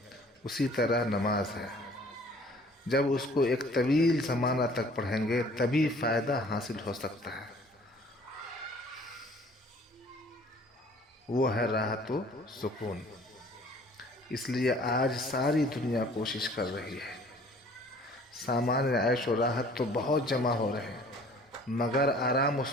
اسی طرح نماز ہے. جب اس کو ایک طویل زمانہ تک پڑھیں گے تبھی فائدہ حاصل ہو سکتا ہے. وہ ہے راحت و سکون. اس لیے آج ساری دنیا کوشش کر رہی ہے. سامان عیش و راحت تو بہت جمع ہو رہے ہیں مگر آرام و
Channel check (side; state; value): both; normal; correlation 0.53